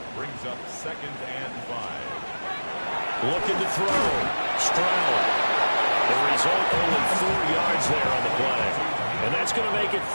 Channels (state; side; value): inverted; both; correlation -1.00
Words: brings up 2nd and 5. Looking to throw. Stroud. The result, only 4 yards there on the play. And that's going to make it